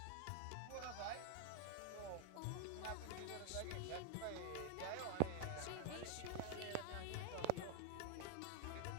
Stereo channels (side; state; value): both; different; correlation 0.01